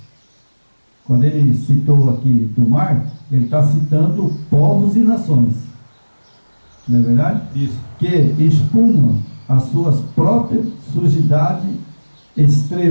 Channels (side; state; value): both; inverted; correlation -1.00